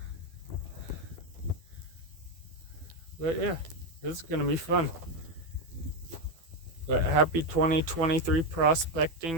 But yeah, this is gonna be fun. But happy 2023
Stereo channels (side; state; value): left; late; 12 ms